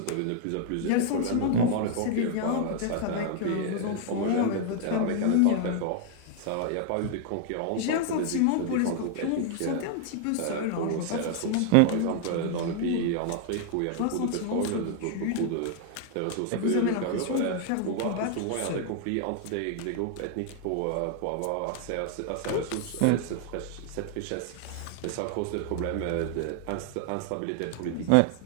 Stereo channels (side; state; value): both; different; correlation 0.00